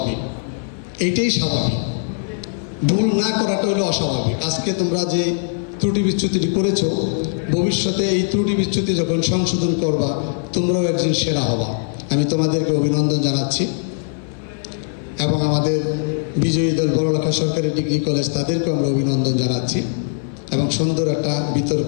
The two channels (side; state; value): right; silent; 59 dB below the other